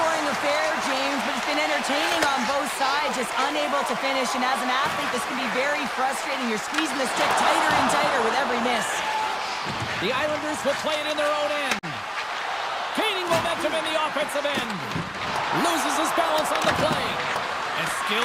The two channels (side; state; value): both; identical; correlation 1.00